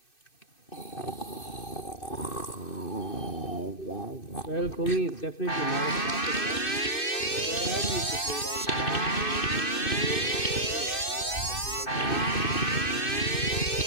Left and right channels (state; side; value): late; right; 2.6 ms